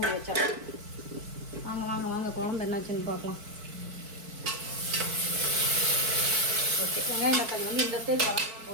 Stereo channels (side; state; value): left; late; 4.6 ms